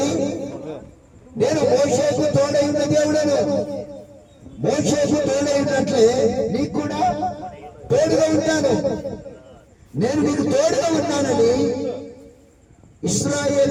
నేను మోషేకు తోడై ఉన్న దేవుడను. మోషేకు తోడై ఉన్నట్లే నీకు కూడా తోడుగా ఉంటాను. నేను నీకు తోడుగా ఉన్నానని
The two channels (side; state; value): both; identical; correlation 1.00